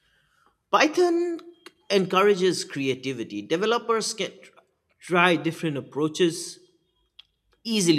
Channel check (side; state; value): both; identical; correlation 1.00